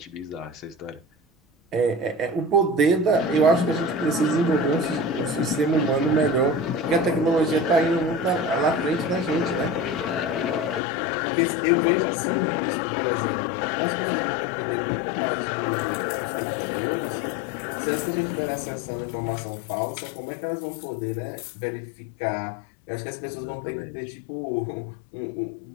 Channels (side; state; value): right; drops out; at 10.8 s